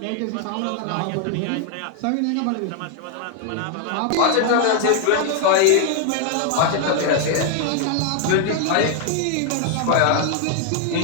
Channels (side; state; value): both; different; correlation 0.00